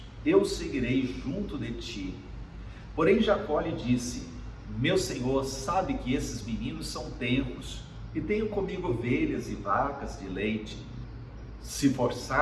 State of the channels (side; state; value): both; identical; correlation 1.00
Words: eu seguirei junto de ti. Porém Jacó lhe disse: meu senhor sabe que esses meninos são tenros, e tenho comigo ovelhas e vacas de leite. Se